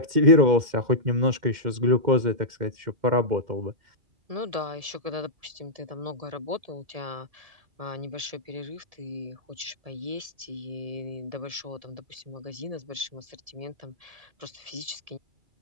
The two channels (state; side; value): late; left; 1.7 ms